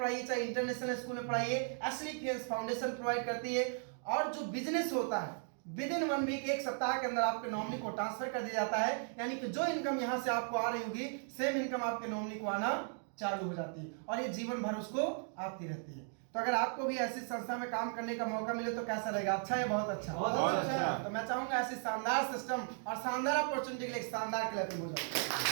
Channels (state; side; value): silent; left; 53 dB below the other